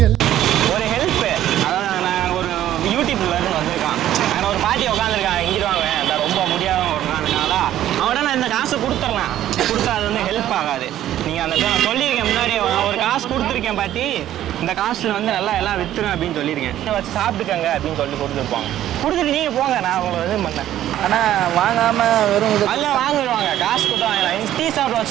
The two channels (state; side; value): quieter; left; 12.4 dB